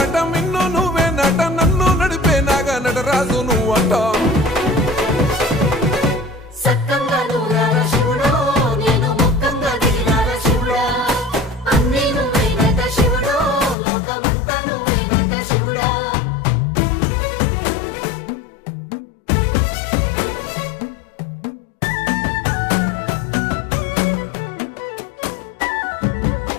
మిన్ను నువ్వే నట నన్ను నడిపే నాగా నటరాజు నువ్వంట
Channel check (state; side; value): drops out; right; at 13.8 s